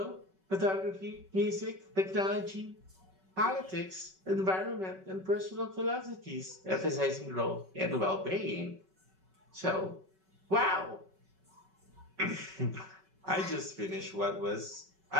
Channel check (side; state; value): left; late; 5.3 ms